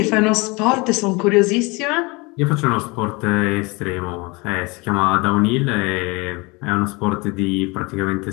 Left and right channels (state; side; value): quieter; right; 26.3 dB